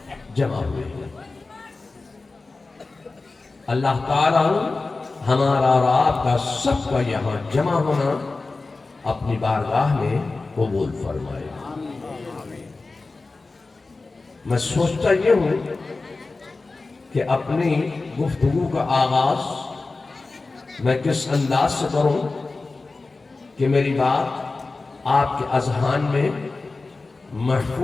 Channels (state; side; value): quieter; right; 3.6 dB